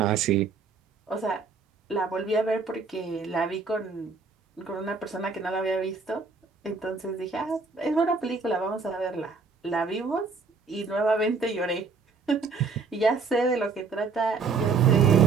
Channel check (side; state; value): left; quieter; 4.6 dB